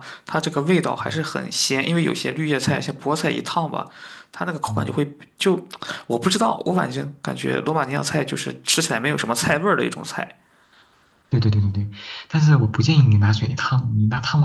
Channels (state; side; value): identical; both; correlation 1.00